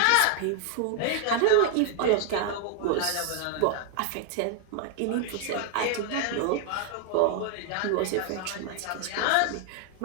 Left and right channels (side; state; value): both; different; correlation 0.00